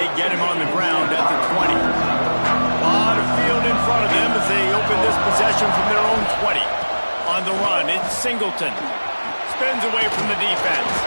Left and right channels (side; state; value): both; inverted; correlation -1.00